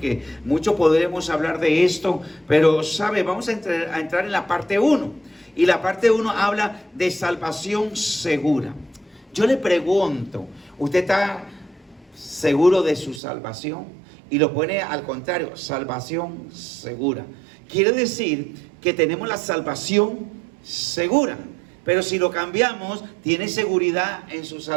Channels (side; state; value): left; drops out; at 13.2 s